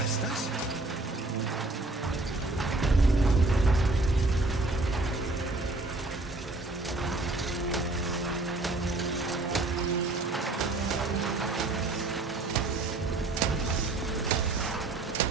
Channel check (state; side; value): quieter; left; 3.1 dB